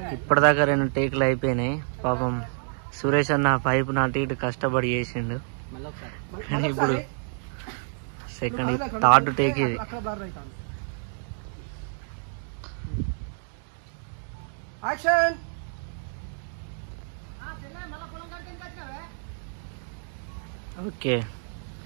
ఇప్పటిదాకా 2 టేకులు అయిపోయినాయి. పాపం సురేష్ అన్న పైపు నాటి ఇటు కష్టపడి చేసిండు. ఇప్పుడు సెకండ్ 3rd టేక్ ఇది. ఓకే,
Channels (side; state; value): left; silent; digital silence